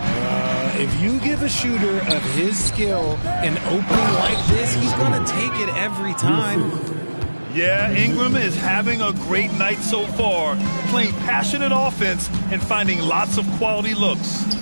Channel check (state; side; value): inverted; both; correlation -1.00